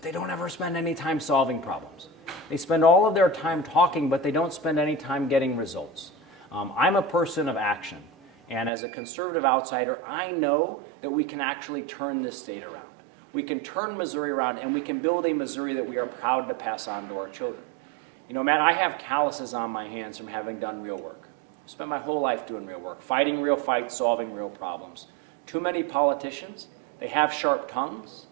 they don't ever spend any time solving problems. They spend all of their time talking, but they don't spend any time getting results. I'm a person of action. And as a conservative outsider, I know that we can actually turn this state around. We can turn Missouri around, and we can build a Missouri that we are proud to pass on to our children. Matt, I have calluses on my hands from having done real work. I spent my whole life doing real work, fighting real fights, solving real problems. Too many politicians, they have sharp tongues,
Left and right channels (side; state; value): left; drops out; at 8.7 s